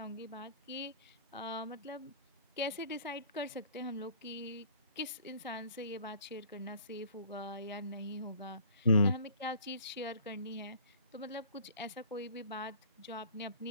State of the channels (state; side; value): inverted; both; correlation -0.49